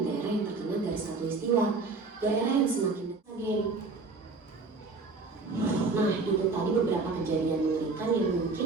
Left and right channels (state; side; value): quieter; left; 3.9 dB